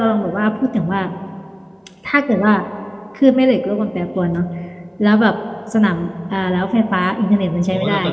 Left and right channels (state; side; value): identical; both; correlation 1.00